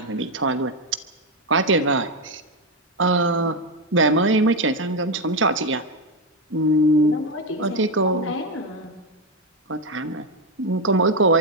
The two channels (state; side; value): normal; both; correlation 0.07